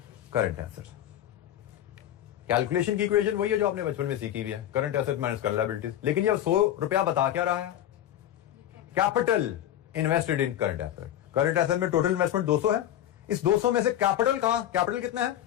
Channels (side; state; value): right; quieter; 11.8 dB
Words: current assets. Calculation की इक्वेशन वही है जो आपने बचपन में सीखी हुई है, current asset minus current liabilities. लेकिन ये 100 रुपया बता क्या रहा है? Capital invested in current asset. Current asset में टोटल इन्वेस्टमेंट 200 है, इस 200 में से कैपिटल कहां? कैपिटल कितना है?